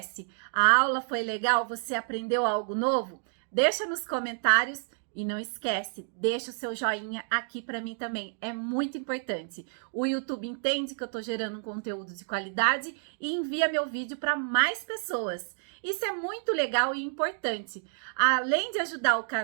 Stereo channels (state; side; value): silent; left; digital silence